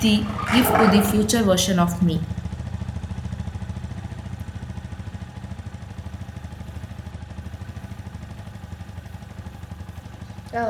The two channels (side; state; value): both; identical; correlation 1.00